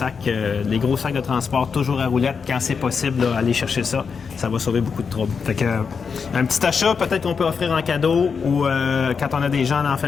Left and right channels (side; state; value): right; quieter; 5.8 dB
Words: les gros sacs de transport, toujours à roulettes, quand c'est possible, là, aller chercher ça. Ça va sauver beaucoup de troubles. Fait que, un petit achat, peut-être qu'on peut offrir en cadeau ou quand on a des gens dans la